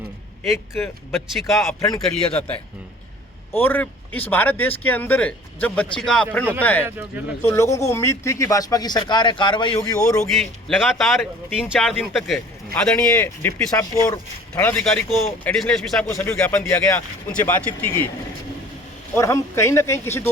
एक बच्ची का अपहरण कर लिया जाता है और इस भारत देश के अंदर जब बच्ची का अपहरण होता है तो लोगों को उम्मीद थी कि भाजपा की सरकार है, कार्रवाई होगी और होगी। लगातार 3-4 दिन तक आदरणीय डिप्टी साहब को और थानाधिकारी को, एडिशनल एसपी साहब को सभी ज्ञापन दिया गया, उनसे बातचीत की गई और हम कहीं ना कहीं किसी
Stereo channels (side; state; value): both; normal; correlation 0.49